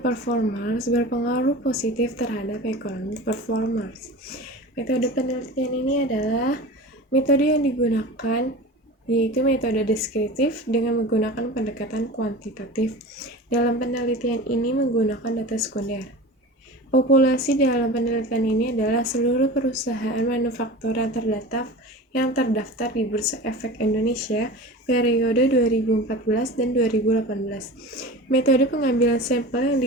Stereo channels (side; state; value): both; normal; correlation 0.34